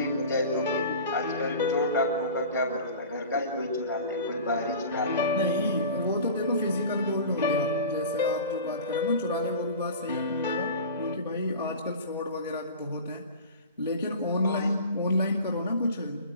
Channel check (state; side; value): inverted; both; correlation -0.37